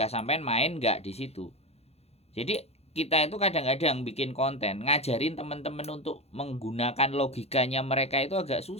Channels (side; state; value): right; late; 0.30 ms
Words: sampean main nggak di situ. Jadi kita itu kadang-kadang bikin konten ngajarin teman-teman untuk menggunakan logikanya mereka itu agak